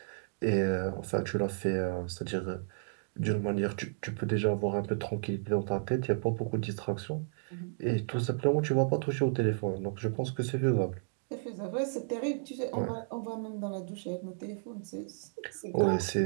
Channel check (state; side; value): silent; left; digital silence